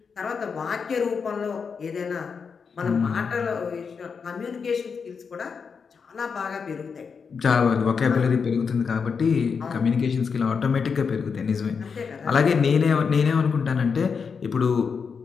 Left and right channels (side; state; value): right; quieter; 5.8 dB